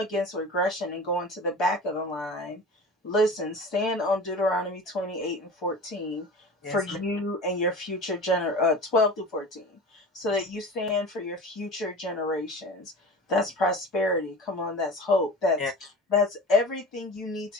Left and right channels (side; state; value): both; normal; correlation 0.35